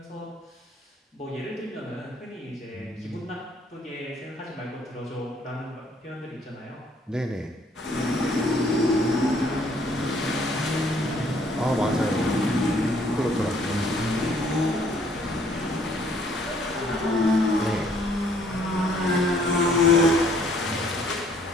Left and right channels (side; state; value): both; normal; correlation 0.62